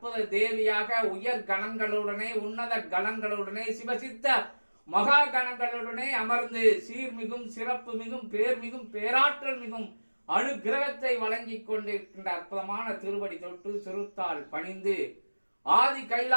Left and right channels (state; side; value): inverted; both; correlation -1.00